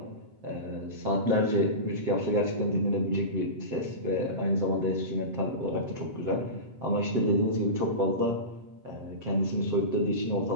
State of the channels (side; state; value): left; late; 8.1 ms